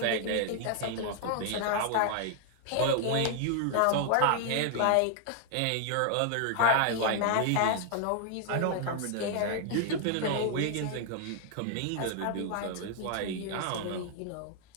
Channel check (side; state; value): both; different; correlation 0.00